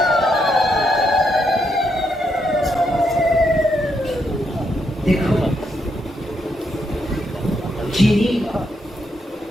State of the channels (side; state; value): both; normal; correlation 0.78